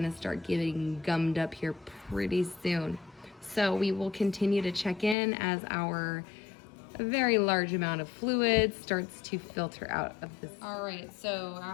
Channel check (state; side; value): drops out; right; at 5.2 s